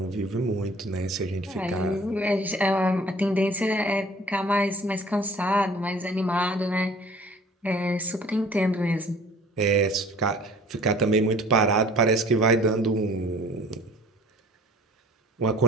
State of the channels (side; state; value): both; normal; correlation 0.50